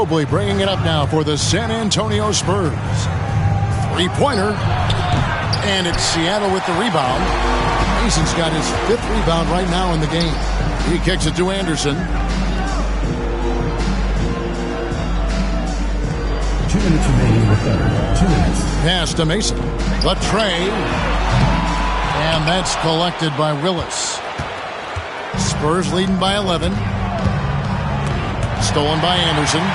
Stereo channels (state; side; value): identical; both; correlation 1.00